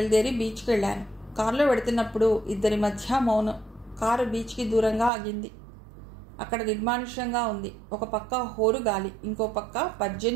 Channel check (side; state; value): left; drops out; at 5.1 s